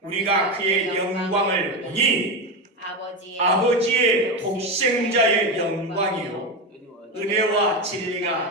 우리가 그의 영광을 보니 아버지의 독생자의 영광이요 은혜와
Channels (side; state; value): both; normal; correlation 0.15